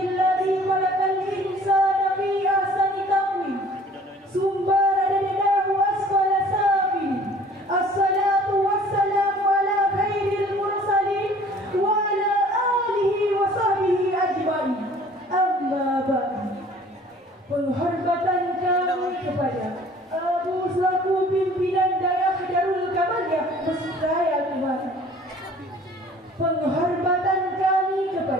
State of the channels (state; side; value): normal; both; correlation 0.51